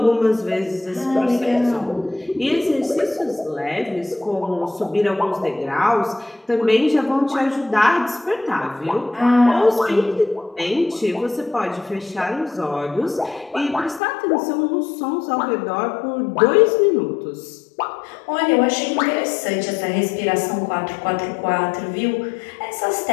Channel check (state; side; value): drops out; right; at 14.0 s